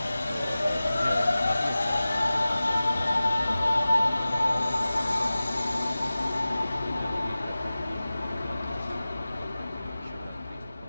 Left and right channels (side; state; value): both; inverted; correlation -0.96